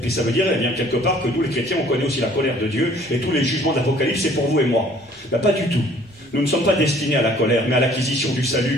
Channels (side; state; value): both; normal; correlation 0.56